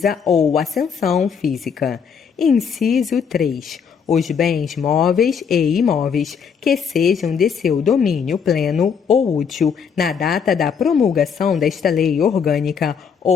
ou ascensão física. Inciso 3. Os bens móveis e imóveis que sejam de seu domínio pleno ou útil na data da promulgação desta lei orgânica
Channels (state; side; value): quieter; right; 6.7 dB